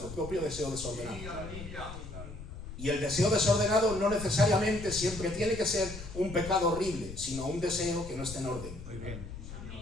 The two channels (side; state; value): left; noise; rumble, 11 dB below the sound